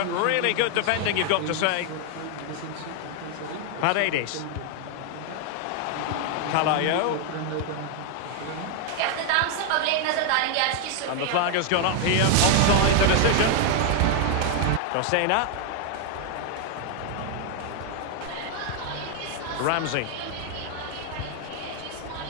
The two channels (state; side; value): different; both; correlation 0.00